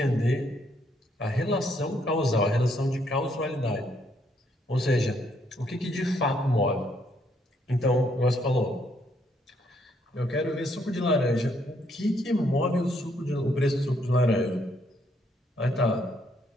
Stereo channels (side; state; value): both; normal; correlation 0.72